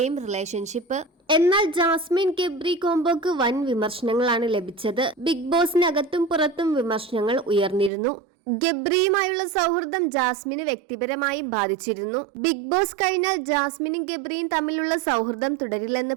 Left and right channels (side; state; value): left; drops out; at 7.9 s